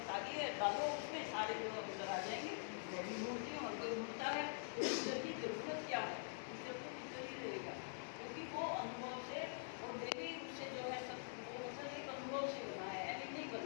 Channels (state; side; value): silent; right; digital silence